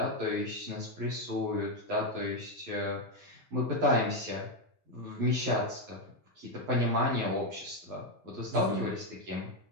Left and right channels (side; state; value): left; late; 11 ms